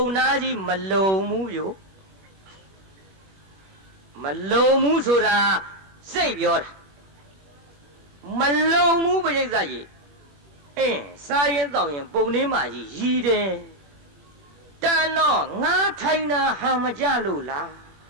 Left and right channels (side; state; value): left; late; 21 ms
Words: နာကြီးမလုံဘူးပြိုမလုံဘူးဆိုတာစိတ်ပြောတာမလုံဘူးပရိသတ်ရေစားရင်တောက်ရင်ပုံထဲမှာကြီးရည်တယ်တန်တော့ငါထိုင်တာဟန်မကြလို့လား